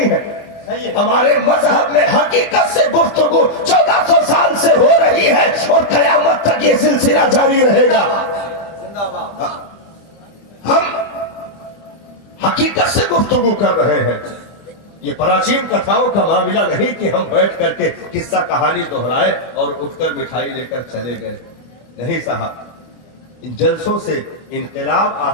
ہیں، ہمارے مذہب میں حقیقت سے گفتگو 1400 سال سے ہو رہی ہے اور قیامت تک یہ سلسلہ جاری رہے گا۔ ہم حقیقت سے گفتگو کر رہے ہیں، یہ پراچین کتھاؤں کا معاملہ نہیں کہ ہم بیٹھ کر کے قصہ کہانی دہرائے اور اٹھ کر مٹھائی لے کر چلے گئے، نہیں صاحب، ان جلسوں سے انقلاب آ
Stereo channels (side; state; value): right; late; 24 ms